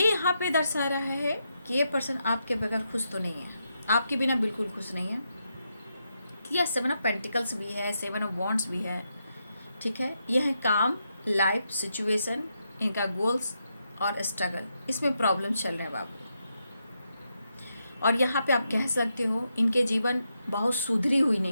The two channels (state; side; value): inverted; both; correlation -0.83